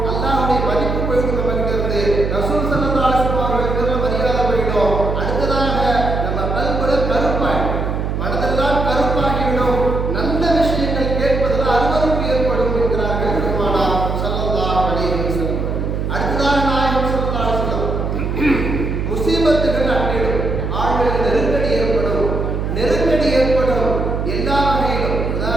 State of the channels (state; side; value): noise; right; hum, 2 dB below the sound